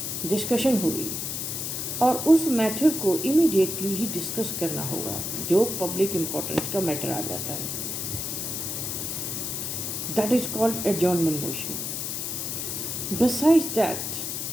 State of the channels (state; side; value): noise; left; hiss, 3 dB below the sound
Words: डिस्कशन होगी और उस मैटर को इमीडिएटली ही डिस्कस करना होगा जो पब्लिक इम्पोर्टेंस का मैटर आ जाता है. That is called adjournment motion. Besides that